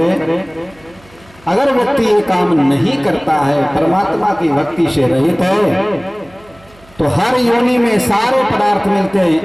अगर व्यक्ति ये काम नहीं करता है, परमात्मा की भक्ति से रहित है, तो हर योनि में सारे पदार्थ मिलते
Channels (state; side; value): noise; right; hum, 27 dB below the sound